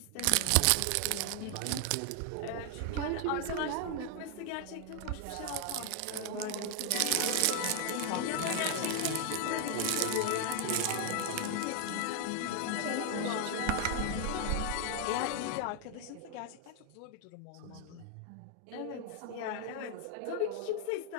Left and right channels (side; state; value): both; different; correlation 0.00